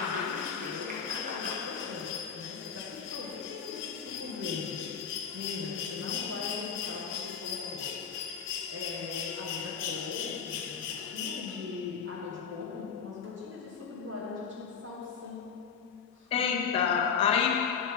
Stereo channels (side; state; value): right; quieter; 6.6 dB